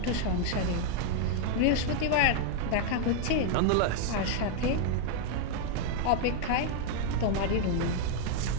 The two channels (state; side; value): different; both; correlation 0.00